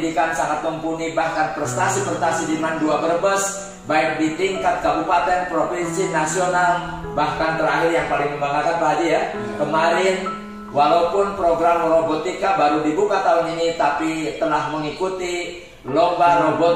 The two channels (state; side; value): identical; both; correlation 1.00